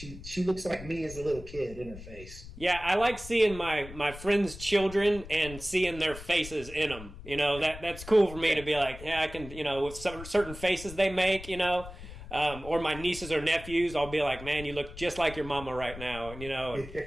looks like me as a little kid in her face. Yeah, I like seeing my friends' children and seeing their faces in them. That's cool for me to be like, yeah, I can, with certain faces they make, or my nieces or nephews, I'll be like, man, you look just like your mama right now,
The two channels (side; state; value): left; noise; rumble, 14 dB below the sound